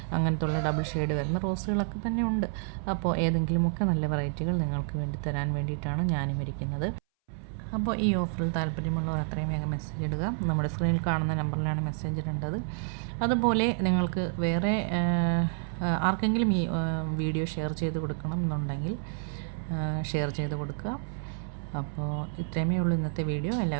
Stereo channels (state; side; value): silent; left; 58 dB below the other